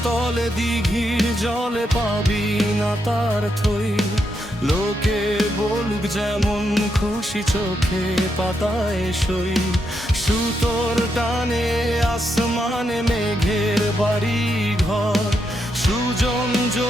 তলে দিঘির জলে পাবি না তার থই, লোকে বলুক যেমন খুশি চোখে পাতায় সই, সুতোর টানে আসমানে মেঘের বাড়ি ঘর, সুজন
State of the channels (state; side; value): normal; both; correlation 0.82